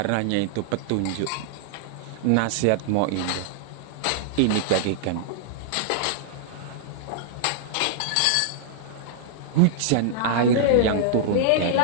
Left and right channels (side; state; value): both; different; correlation -0.01